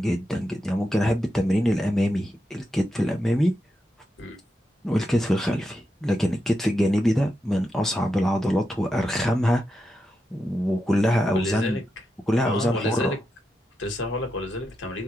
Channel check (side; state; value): both; normal; correlation 0.87